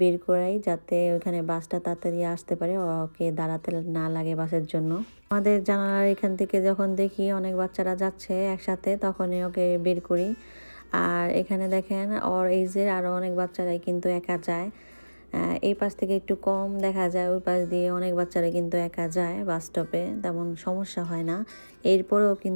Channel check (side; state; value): both; inverted; correlation -1.00